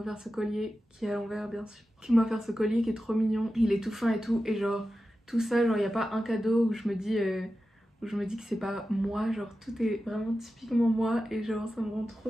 ce collier, qui est à l'envers bien sûr, qui m'a offert ce collier qui est trop mignon, il est tout fin et tout. Et genre tout ça, genre y a pas un cadeau où je me dis que c'est pas moi, genre tout est vraiment typiquement moi. Et genre ça me rend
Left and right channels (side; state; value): both; normal; correlation 0.92